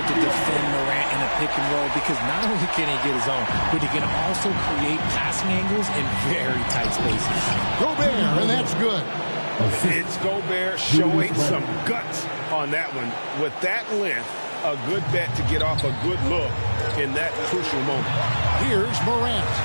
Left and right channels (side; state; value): both; inverted; correlation -1.00